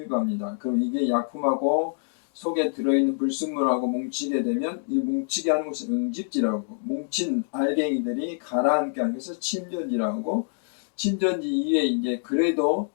그럼 이게 약품하고 속에 들어있는 불순물하고 뭉치게 되면 이 뭉치게 하는 것을 응집지라고, 뭉친 알갱이들이 가라앉게 하는 것을 침전지라고 하고, 침전지 이외에 이제 그래도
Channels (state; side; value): silent; right; digital silence